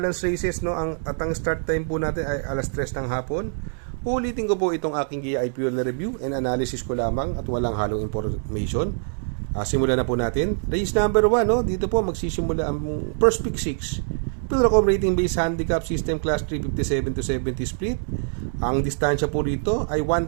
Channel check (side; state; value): left; silent; digital silence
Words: races, no? At ang start time po natin ay alas 3 ng hapon. Ulitin ko po itong aking giya ay pure review and analysis ko lamang at walang halong information. Simulan na po natin. Race number 1, no? Dito po magsisimula ang first pick 6. Pilracom rating based handicap system class 357 to 70 split. Ang distansya po rito ay